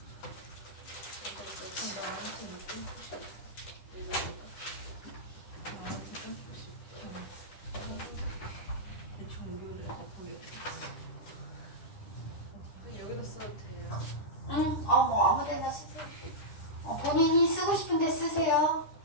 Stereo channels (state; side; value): late; right; 10 ms